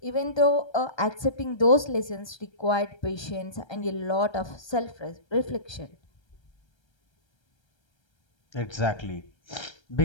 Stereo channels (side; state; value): right; late; 1.3 ms